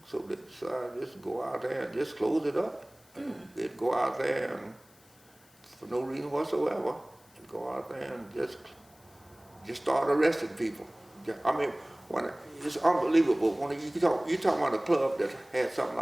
so they decided just go out there and just close it up. They'd go out there and, for no reason whatsoever, and go out there and just start arresting people. I mean, it's unbelievable. When you talk about a club that had something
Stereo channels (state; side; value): noise; left; hiss, 29 dB below the sound